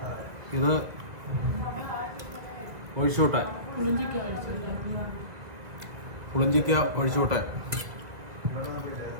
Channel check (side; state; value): left; late; 2.2 ms